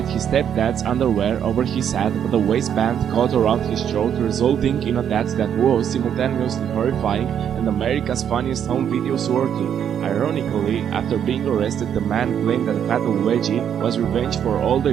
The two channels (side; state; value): left; quieter; 8.9 dB